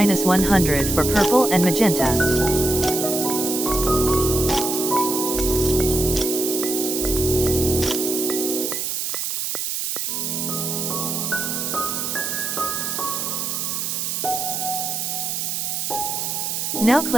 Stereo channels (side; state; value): right; noise; hiss, 2 dB below the sound